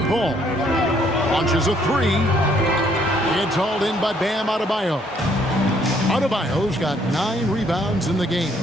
Ball. Launches a 3. It's hauled in by Bam Adebayo. Adebayo's got 9 rebounds in the game.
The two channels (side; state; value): both; normal; correlation 0.66